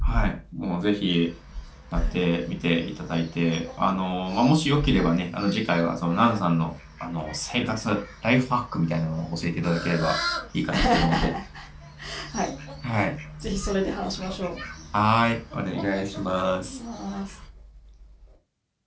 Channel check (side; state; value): both; identical; correlation 1.00